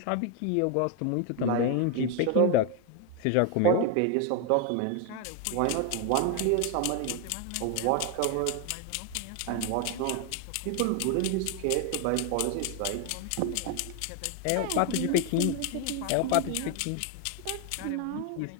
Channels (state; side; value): different; both; correlation 0.01